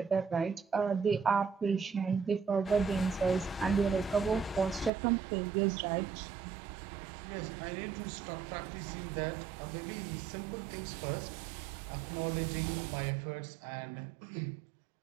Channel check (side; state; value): left; drops out; at 4.9 s